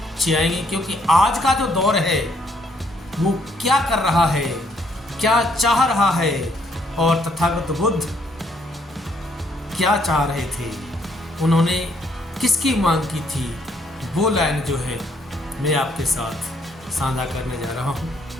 आएंगी, क्योंकि आज का जो दौर है वो क्या कर रहा है, क्या चाह रहा है और तथागत बुद्ध क्या चाह रहे थे, उन्होंने किसकी मांग की थी, वो लाइन जो है मैं आपके साथ साझा करने जा रहा हूँ।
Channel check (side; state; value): both; normal; correlation 0.69